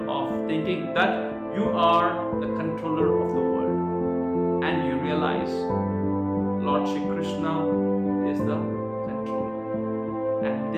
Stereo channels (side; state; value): both; identical; correlation 1.00